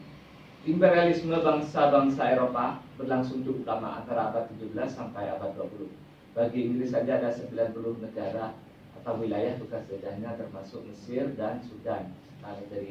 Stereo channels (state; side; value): identical; both; correlation 1.00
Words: imperialisme bangsa-bangsa Eropa berlangsung cukup lama, antara abad 17 sampai abad 20. Bagi Inggris saja ada 90 negara atau wilayah bekas jajahnya, termasuk Mesir dan Sudan,